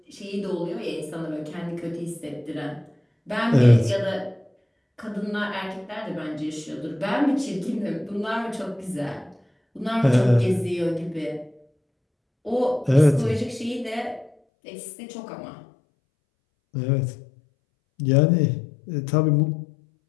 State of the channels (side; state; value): right; drops out; at 14.3 s